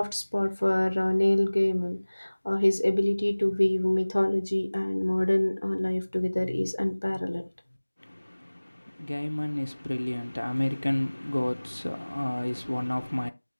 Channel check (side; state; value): both; inverted; correlation -1.00